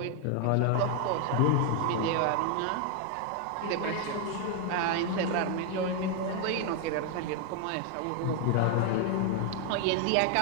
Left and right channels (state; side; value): different; both; correlation 0.00